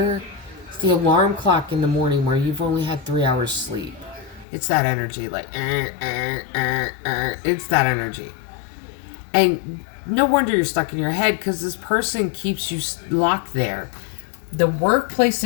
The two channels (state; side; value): drops out; right; at 4.5 s